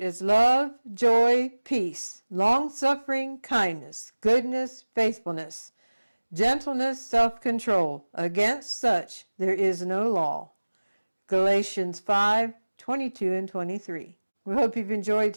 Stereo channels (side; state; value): both; inverted; correlation -1.00